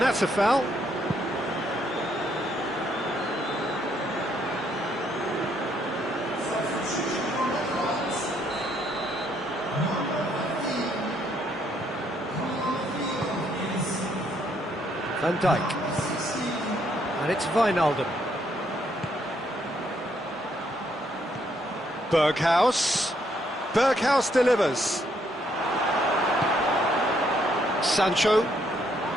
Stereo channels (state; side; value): normal; both; correlation 0.71